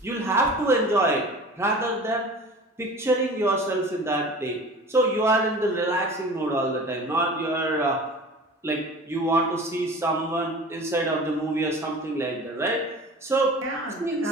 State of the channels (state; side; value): normal; both; correlation 0.40